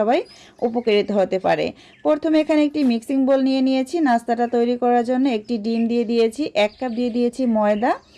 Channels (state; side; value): identical; both; correlation 1.00